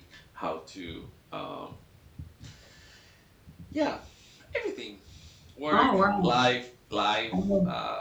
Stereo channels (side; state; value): both; identical; correlation 1.00